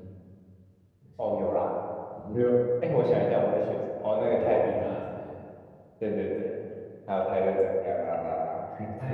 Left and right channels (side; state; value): both; identical; correlation 1.00